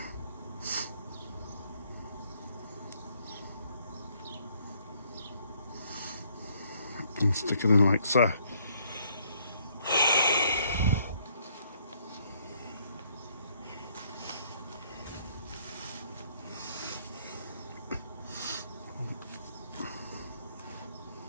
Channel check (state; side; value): inverted; both; correlation -0.67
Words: And stick it in like so.